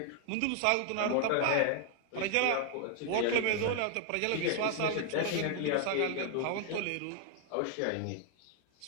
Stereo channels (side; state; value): both; different; correlation 0.00